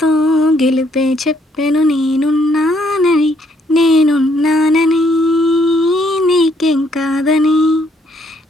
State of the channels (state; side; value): normal; both; correlation 0.70